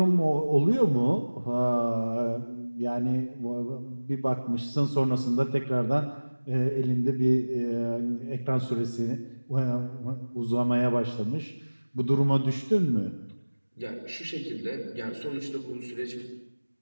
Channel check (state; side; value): inverted; both; correlation -1.00